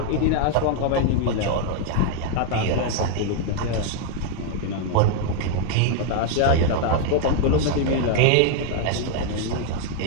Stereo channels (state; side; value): different; both; correlation 0.00